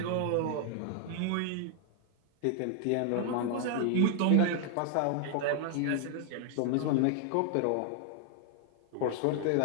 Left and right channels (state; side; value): different; both; correlation 0.00